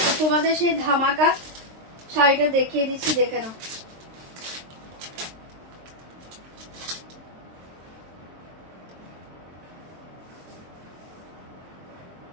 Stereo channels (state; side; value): late; left; 23 ms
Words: তোমাদের সেই ধামাকা শাড়িটা দেখিয়ে দিচ্ছি, দেখে নাও।